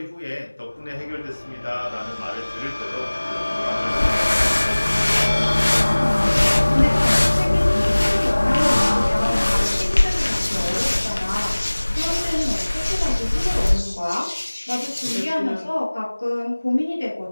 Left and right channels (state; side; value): inverted; both; correlation -1.00